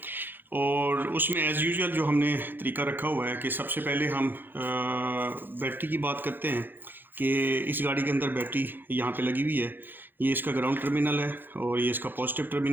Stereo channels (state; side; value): late; left; 0.095 ms